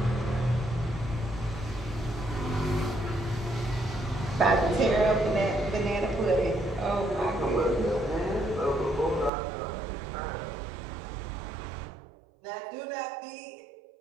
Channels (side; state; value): left; drops out; at 9.3 s